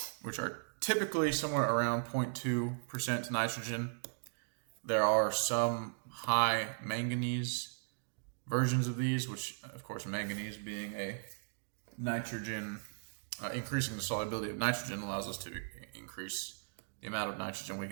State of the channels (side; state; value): left; silent; digital silence